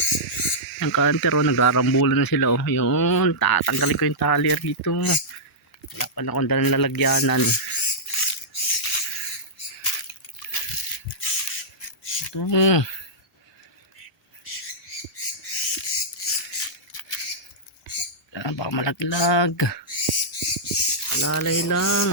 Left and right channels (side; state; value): both; normal; correlation -0.12